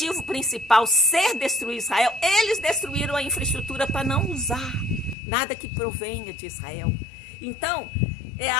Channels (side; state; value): right; drops out; at 5.2 s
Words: principal ser destruir Israel, eles destruíram a infraestrutura para não usar nada que provenha de Israel. Então, é